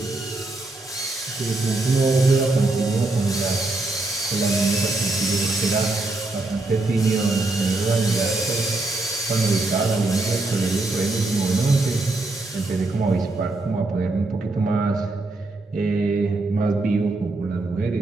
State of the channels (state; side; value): quieter; left; 3.0 dB